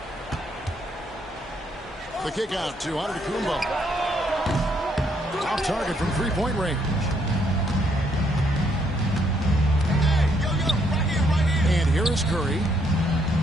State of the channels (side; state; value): both; normal; correlation 0.72